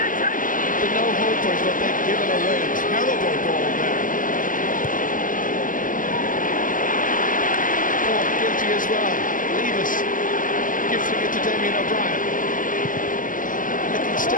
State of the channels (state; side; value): late; right; 0.39 ms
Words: no-hopers, but they've given away a terrible ball there. Cork guilty as well. Levis gifting it to Damien O'Brien.